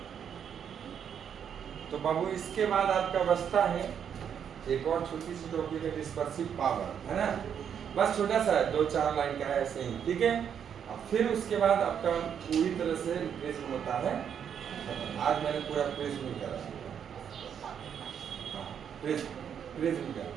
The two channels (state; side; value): quieter; left; 8.2 dB